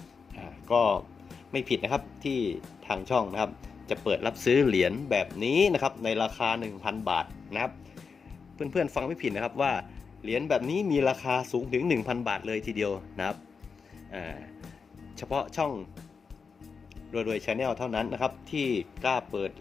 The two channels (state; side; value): quieter; right; 5.4 dB